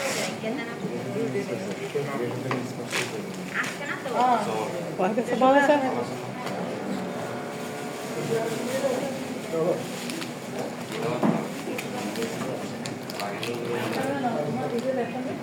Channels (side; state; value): both; identical; correlation 1.00